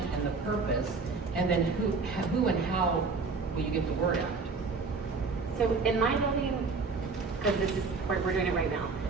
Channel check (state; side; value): quieter; left; 4.4 dB